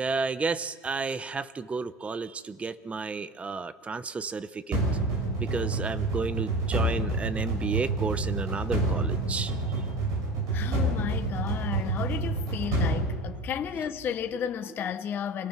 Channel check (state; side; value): normal; both; correlation 0.35